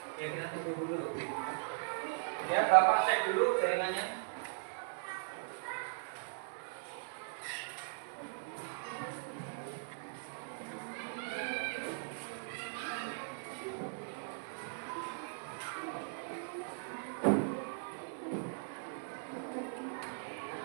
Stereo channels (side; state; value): left; silent; digital silence